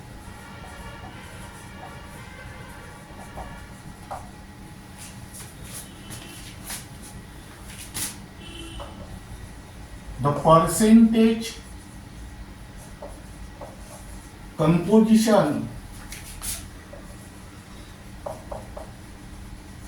the percentage composition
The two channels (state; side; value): identical; both; correlation 1.00